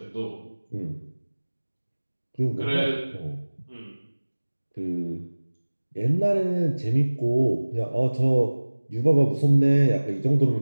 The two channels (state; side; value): inverted; both; correlation -1.00